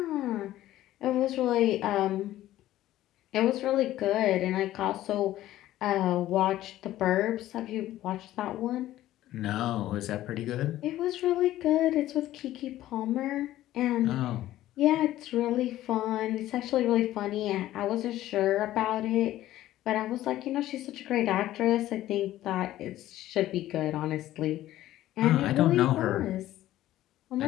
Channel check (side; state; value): right; quieter; 14.3 dB